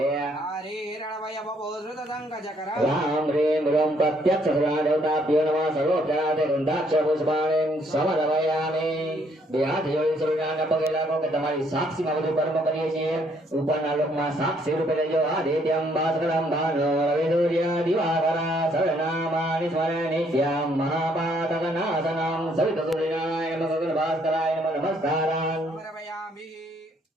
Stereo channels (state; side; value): normal; both; correlation 0.68